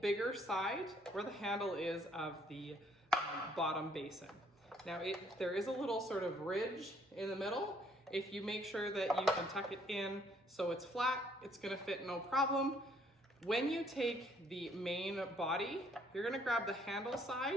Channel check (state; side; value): normal; both; correlation 0.65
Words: bigger side where the handle is of the bottom basin. Now, there is a little sort of ridge in the middle. If you make sure that you can tuck it in so it's flat, it's gonna fit no problem. When you take the main body, you're gonna grab the handle